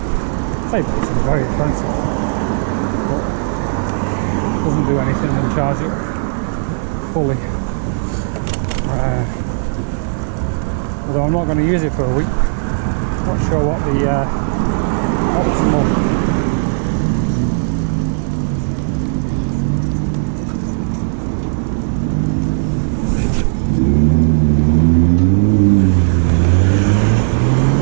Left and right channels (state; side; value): silent; left; digital silence